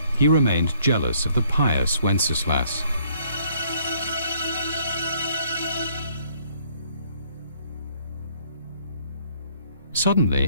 he remained jealous of the pious Wenceslas.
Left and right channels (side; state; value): both; inverted; correlation -0.64